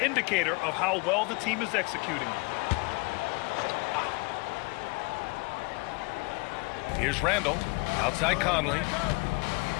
indicator of how well the team is executing. Here's Randall, outside Conley.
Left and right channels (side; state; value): right; quieter; 28.9 dB